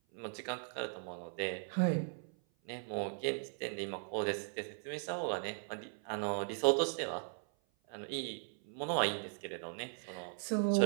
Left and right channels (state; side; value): silent; left; 52 dB below the other